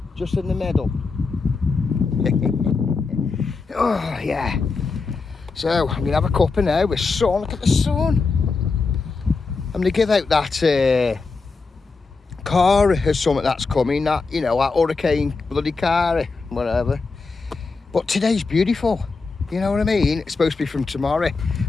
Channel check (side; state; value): right; quieter; 4.3 dB